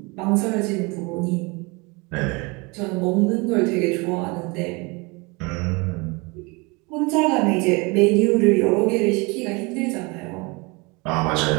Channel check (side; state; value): left; quieter; 27.4 dB